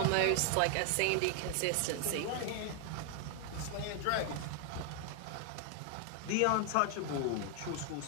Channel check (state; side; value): different; both; correlation 0.00